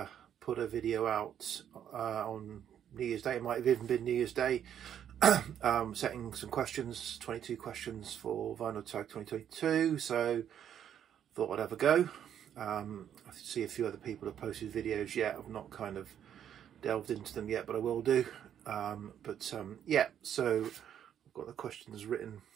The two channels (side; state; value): left; quieter; 9.5 dB